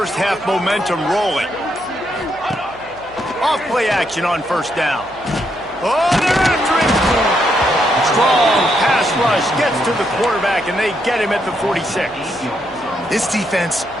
half momentum rolling. Off play action on 1st down. Oh, they're after him. Strong pass rush gets to the quarterback, and they get him at the 46. This defense,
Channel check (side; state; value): right; noise; hum, 25 dB below the sound